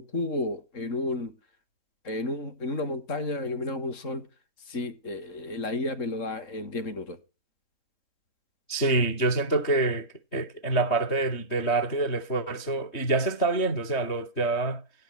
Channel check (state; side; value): late; right; 3.2 ms